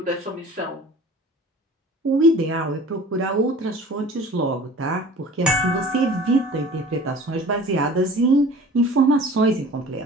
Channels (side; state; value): both; normal; correlation 0.43